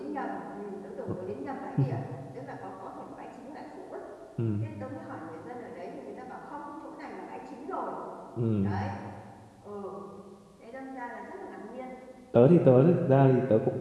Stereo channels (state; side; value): identical; both; correlation 1.00